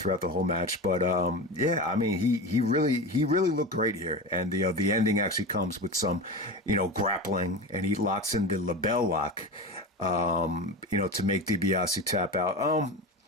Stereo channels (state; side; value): normal; both; correlation 0.25